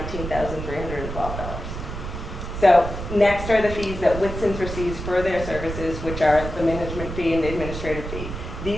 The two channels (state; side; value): noise; right; rumble, 7 dB below the sound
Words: So next are the fees that Whitson's receives for their services, which are the management fee and the administrative fee.